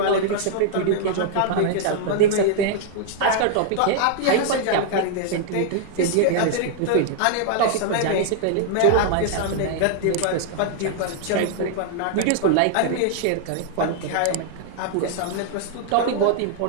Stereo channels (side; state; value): both; different; correlation 0.00